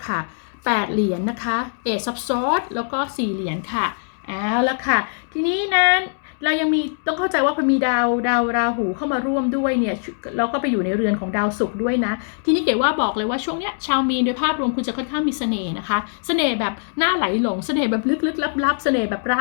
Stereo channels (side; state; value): right; silent; digital silence